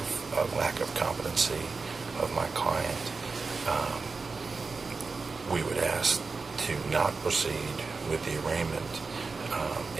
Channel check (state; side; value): quieter; left; 4.3 dB